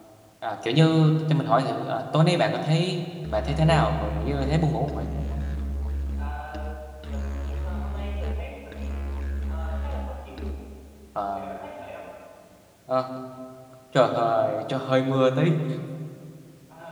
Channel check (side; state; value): both; identical; correlation 1.00